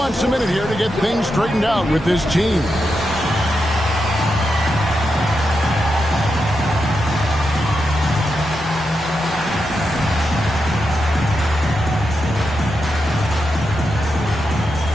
a minute here to get things straightened out with his team.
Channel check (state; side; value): normal; both; correlation 0.86